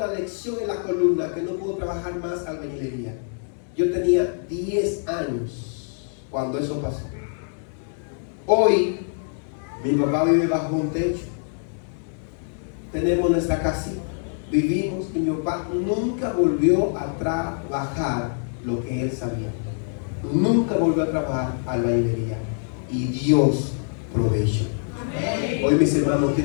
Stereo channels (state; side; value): silent; right; 62 dB below the other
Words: lección en la columna que no pudo trabajar más albañilería. Yo tenía 10 años cuando eso pasó. Hoy, mi papá vive bajo un techo. Tenemos nuestra casita. Vivimos y mi papá nunca volvió a trabajar lo que él sabía. Nunca volvió a trabajar albañilería. Y Dios proveyó. Hoy mis hermanos